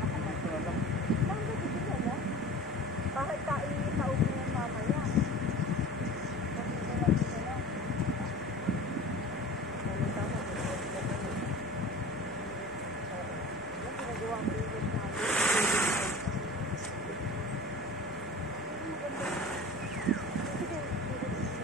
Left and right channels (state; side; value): normal; both; correlation 0.38